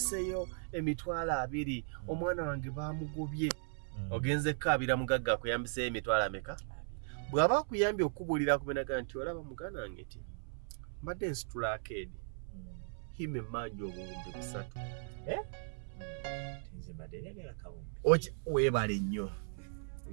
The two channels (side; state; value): left; silent; 53 dB below the other